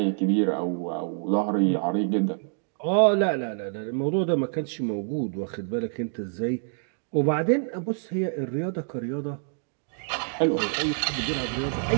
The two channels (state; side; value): silent; left; digital silence